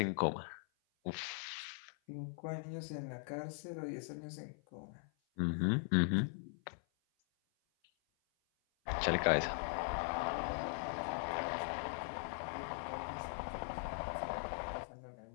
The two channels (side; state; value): right; silent; 51 dB below the other